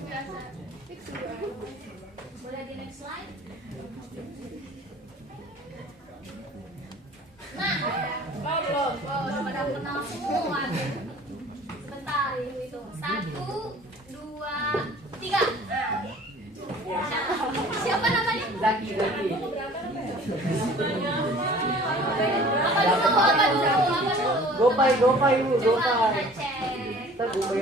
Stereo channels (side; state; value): both; normal; correlation 0.48